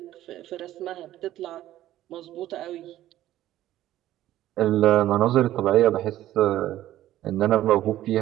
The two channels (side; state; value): left; quieter; 13.7 dB